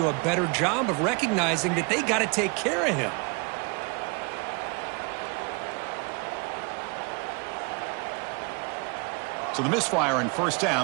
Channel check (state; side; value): quieter; left; 31.2 dB